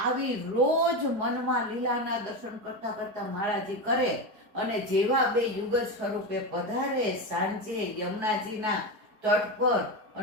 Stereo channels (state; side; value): late; left; 4.7 ms